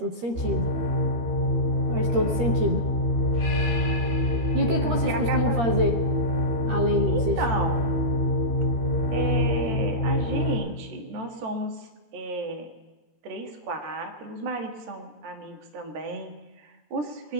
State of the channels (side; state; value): left; late; 13 ms